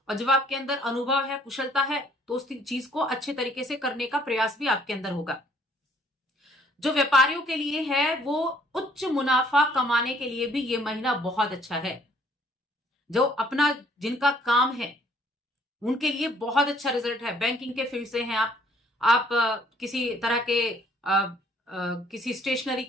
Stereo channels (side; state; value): both; normal; correlation 0.61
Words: और जब आपके अंदर अनुभव है, कुशलता है, तो उस चीज को अच्छे तरीके से करने का प्रयास भी आपके अंदर होगा। जो व्यापारियों के लिए है वो उच्च मुनाफा कमाने के लिए भी ये महीना बहुत अच्छा है। जो अपना जिनका काम है उनके लिए बहुत अच्छा रिजल्ट है। बैंकिंग के फील्ड से हैं आप किसी तरह के किसी स्टेशनरी